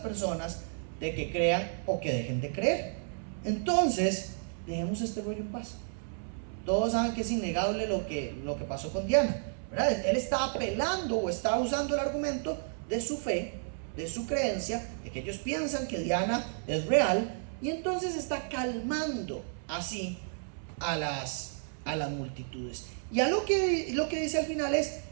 de que crean o que dejen de creer. Entonces, dejemos este rollo en paz. Todos saben que es innegable lo que pasó con Diana, ¿verdad? Él está apelando o está usando el argumento de su fe, de su creencia, de que ellos piensan que Diana es real, y entonces está calmando así a las multitudes. Y a lo que dice al final es,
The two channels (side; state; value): left; silent; 57 dB below the other